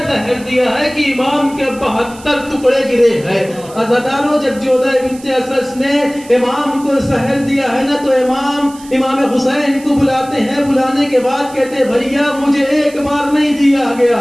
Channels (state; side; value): noise; right; hiss, 20 dB below the sound